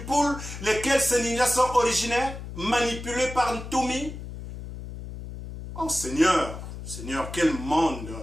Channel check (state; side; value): noise; left; hum, 10 dB below the sound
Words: lesquels ces ninjas sont originaires, manipulés par Ntoumi? Oh Seigneur, Seigneur, quel monde!